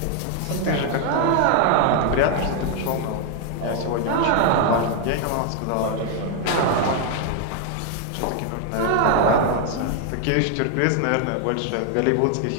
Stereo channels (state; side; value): different; both; correlation 0.00